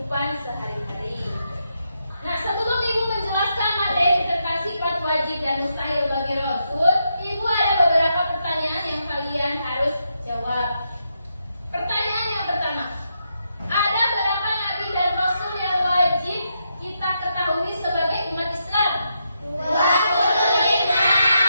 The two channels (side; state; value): both; inverted; correlation -0.82